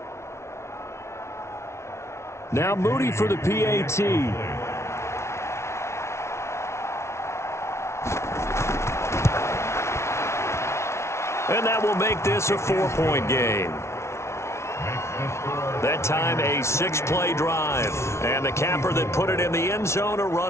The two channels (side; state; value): right; late; 0.13 ms